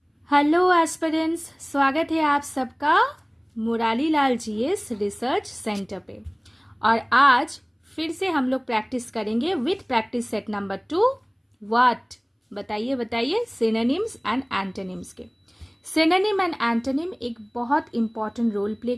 हेलो एस्पिरेंट्स, स्वागत है आप सबका Murari Lal GS research centre पे। और आज फिर से हम लोग प्रैक्टिस करेंगे with practice set number 2। What बताइए बताइए, सिनोनिम्स एंड एंटोनिम्स के। सिनोनिम एंड एंटोनिम एक बहुत इंपॉर्टेंट रोल प्ले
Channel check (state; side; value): identical; both; correlation 1.00